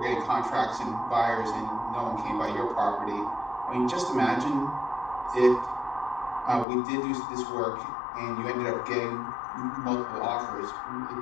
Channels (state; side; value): drops out; right; at 6.7 s